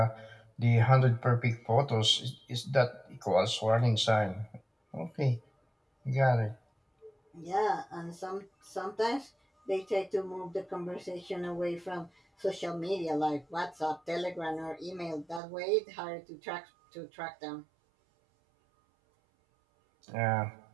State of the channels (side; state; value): left; drops out; at 15.4 s